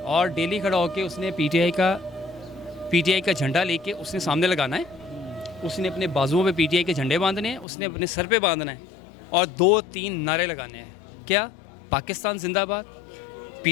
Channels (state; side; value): drops out; right; at 7.7 s